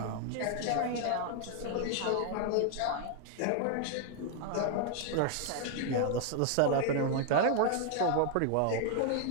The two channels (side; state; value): both; different; correlation 0.00